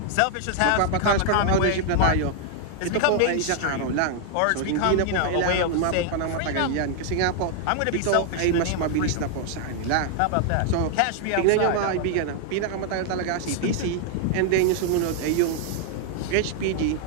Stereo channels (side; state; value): both; different; correlation 0.00